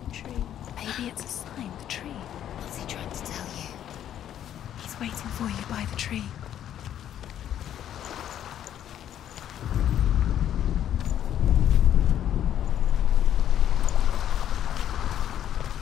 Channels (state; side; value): quieter; right; 10.6 dB